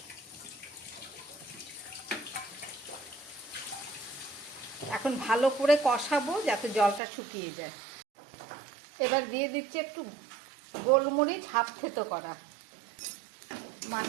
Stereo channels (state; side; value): drops out; left; at 7.0 s